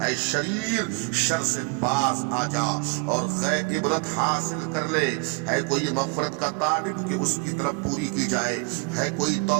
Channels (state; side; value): quieter; left; 32.4 dB